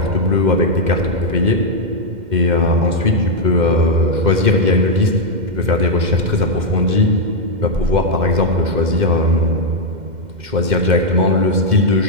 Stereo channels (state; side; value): late; left; 2.1 ms